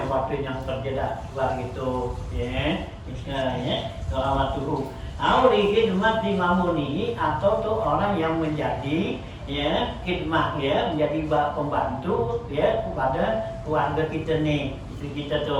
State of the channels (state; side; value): identical; both; correlation 1.00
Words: bantuin yang kerja dah gitu ya dohamat tuh. Auli khidmat di mamuni, atau tuh orang yang menjadi ya khidmah ya menjadi pembantu ya kepada keluarga kita nih, istri kita